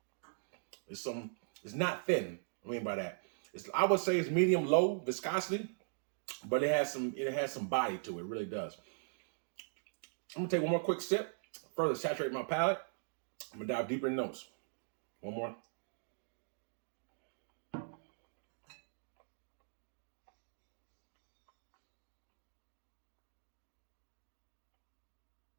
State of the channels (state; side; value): silent; left; digital silence